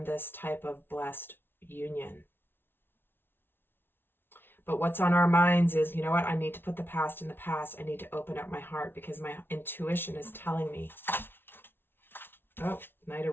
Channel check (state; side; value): late; right; 0.11 ms